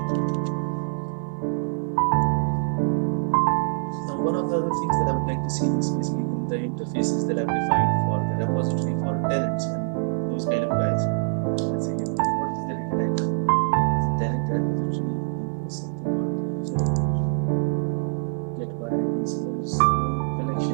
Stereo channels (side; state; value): left; silent; digital silence